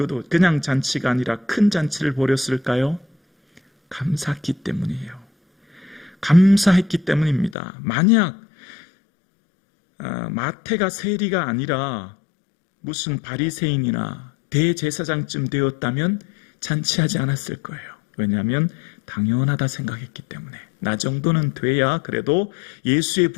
그냥 잔치가 아니라 큰 잔치를 벌였을까요? 감사했기 때문이에요. 감사했기 때문입니다. 만약 마태가 세리가 아니라 무슨 바리새인이나 대제사장쯤 되었다면 잔치하지 않았을 거예요. 왜냐하면 당연하다 생각했기 때문에, 나 정도는 돼야 그래도 예수의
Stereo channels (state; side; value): drops out; right; at 7.6 s